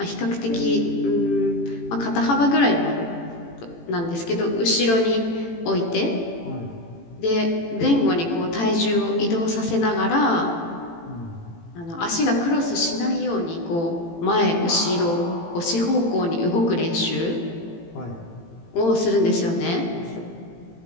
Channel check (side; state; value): right; late; 18 ms